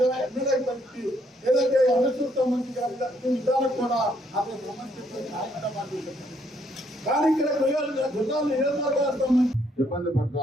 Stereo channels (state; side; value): normal; both; correlation 0.70